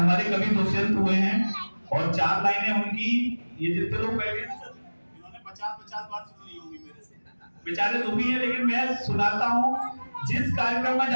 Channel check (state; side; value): inverted; both; correlation -1.00